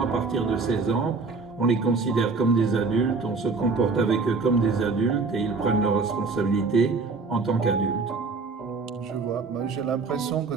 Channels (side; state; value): left; quieter; 4.2 dB